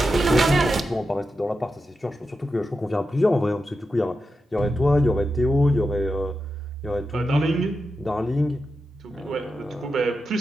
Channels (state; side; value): normal; both; correlation 0.89